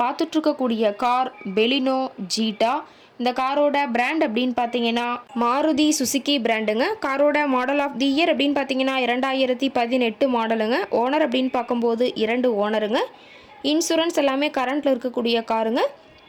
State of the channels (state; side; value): identical; both; correlation 1.00